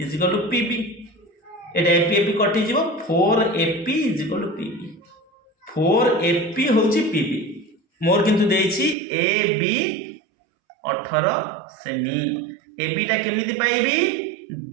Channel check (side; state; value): left; drops out; at 9.0 s